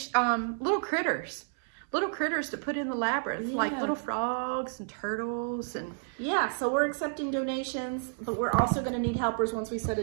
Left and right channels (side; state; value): left; silent; 58 dB below the other